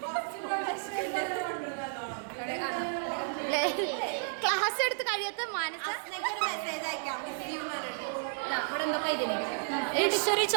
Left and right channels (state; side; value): silent; left; digital silence